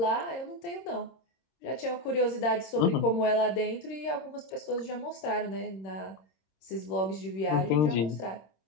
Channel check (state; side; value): late; right; 26 ms